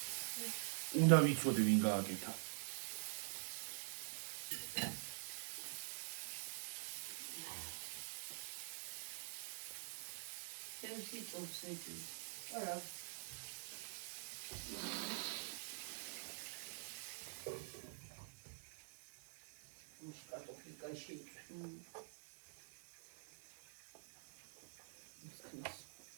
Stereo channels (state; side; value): silent; left; digital silence